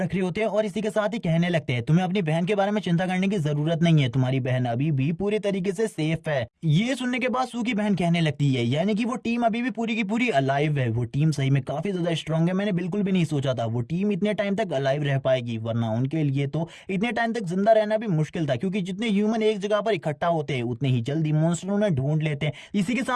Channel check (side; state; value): both; identical; correlation 1.00